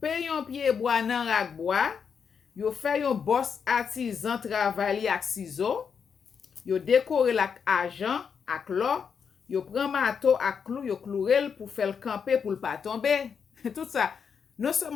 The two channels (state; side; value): quieter; right; 6.6 dB